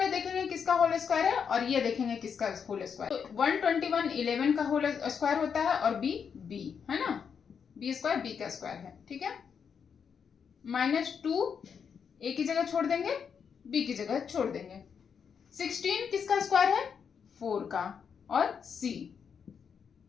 देखेंगे किसका होल स्क्वायर है और ये देखेंगे किसका होल स्क्वायर। तो 121 11 का होल स्क्वायर होता है और b b है ना, b स्क्वायर b का स्क्वायर है। ठीक है, माइनस 2 a की जगह छोड़ देंगे, b की जगह छोड़ देंगे। 16 किसका स्क्वायर है? 4 का और c।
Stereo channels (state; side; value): quieter; right; 6.8 dB